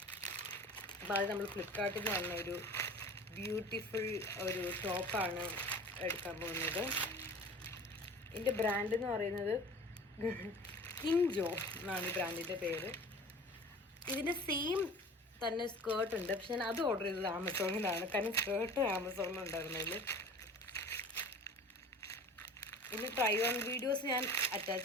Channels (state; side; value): normal; both; correlation 0.41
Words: അപ്പോൾ അത് നമ്മൾ ഫ്ലിപ്കാർട്ടിൽ നിന്ന് വന്ന ഒരു ബ്യൂട്ടിഫുൾ ഒരു ടോപ്പാണ് എടുക്കാൻ പോകുന്നത്. ഇതിൻ്റെ ബ്രാൻഡ് എന്ന് പറയുന്നത് കിൻജോ എന്നാണ് ഈ ബ്രാൻഡിൻ്റെ പേര്. ഇതിൻ്റെ സെയിം തന്നെ സ്കേർട്ട് ഉണ്ട്, പക്ഷെ ഞാൻ അത് ഓർഡർ ചെയ്തത് ആമസോണിലാണ്, കാരണം സ്കേർട്ട് ആമസോണിലുണ്ടായിരുന്നുള്ളൂ. ഇനി ട്രൈ ഓൺ വീഡിയോസ് ഞാൻ